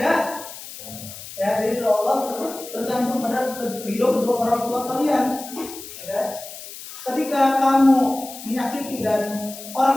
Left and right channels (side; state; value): left; noise; hiss, 13 dB below the sound